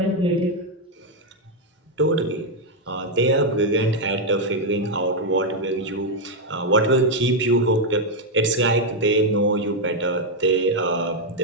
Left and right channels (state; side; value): normal; both; correlation 0.01